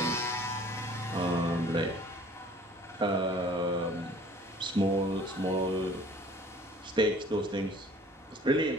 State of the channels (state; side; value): normal; both; correlation 0.51